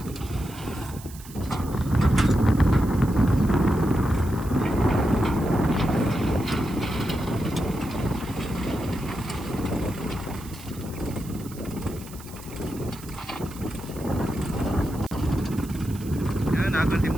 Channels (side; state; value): right; noise; hiss, 18 dB below the sound